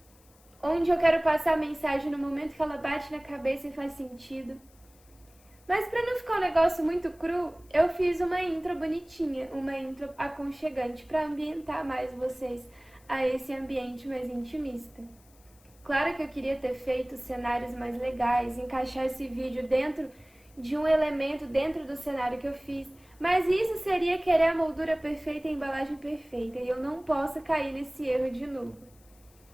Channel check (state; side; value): noise; left; hiss, 29 dB below the sound